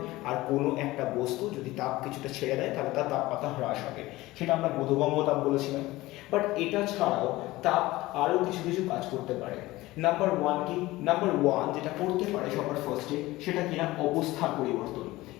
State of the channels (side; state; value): right; quieter; 18.6 dB